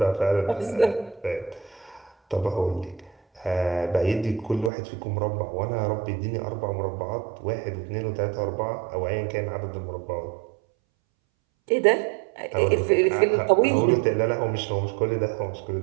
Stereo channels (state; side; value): drops out; left; at 4.7 s